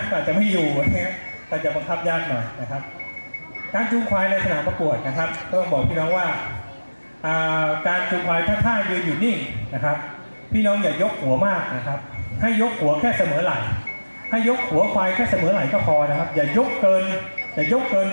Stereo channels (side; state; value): both; inverted; correlation -1.00